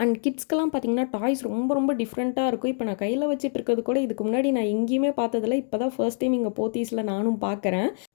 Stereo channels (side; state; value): right; silent; 61 dB below the other